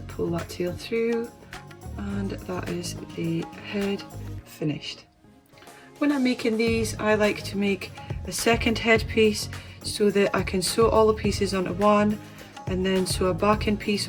pull that tail through, and that is the head finished. When I'm making these, I like to make a second headpiece so that I can sew all the pieces onto one and then sew a backing piece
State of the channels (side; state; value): both; identical; correlation 1.00